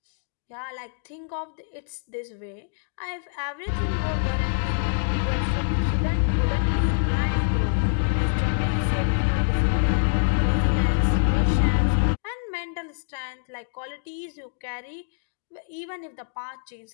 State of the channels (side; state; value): right; silent; digital silence